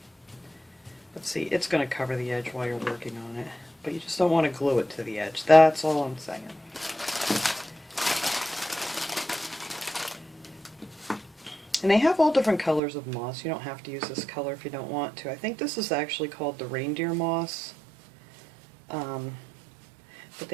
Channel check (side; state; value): left; drops out; at 12.8 s